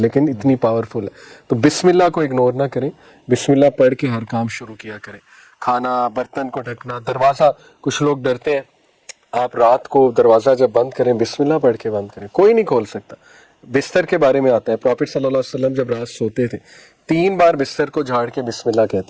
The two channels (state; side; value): identical; both; correlation 1.00